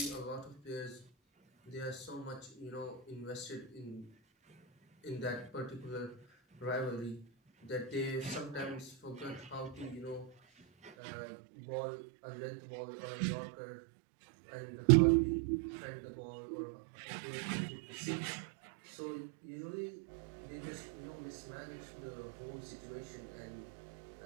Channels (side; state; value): left; drops out; at 10.9 s